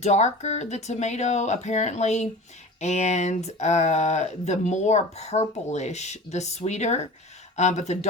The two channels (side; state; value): both; normal; correlation 0.37